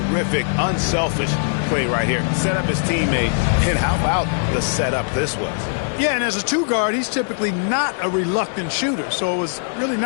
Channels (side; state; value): right; silent; 65 dB below the other